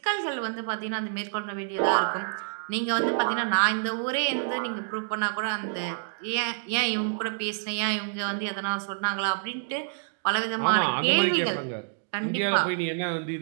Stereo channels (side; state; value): left; silent; digital silence